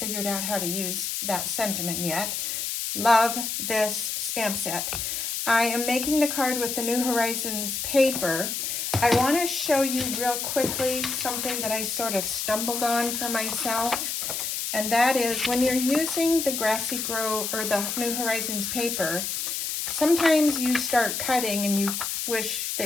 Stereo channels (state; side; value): noise; left; hiss, 2 dB below the sound